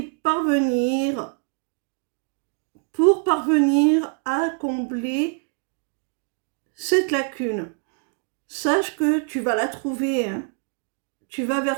parvenir, pour parvenir à combler cette lacune. Sache que tu vas la trouver, hein. Tu vas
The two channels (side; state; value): left; quieter; 39.7 dB